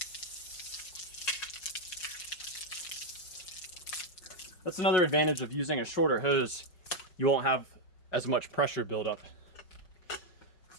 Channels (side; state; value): right; late; 5.5 ms